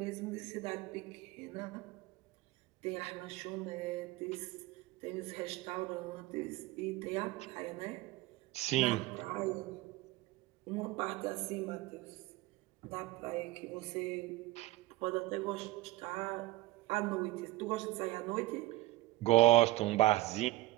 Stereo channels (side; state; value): left; quieter; 18.1 dB